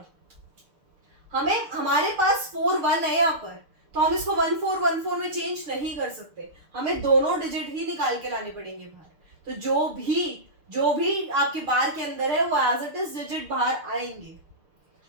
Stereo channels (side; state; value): left; late; 6.7 ms